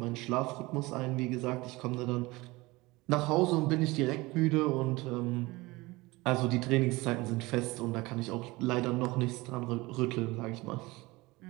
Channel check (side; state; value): left; quieter; 21.8 dB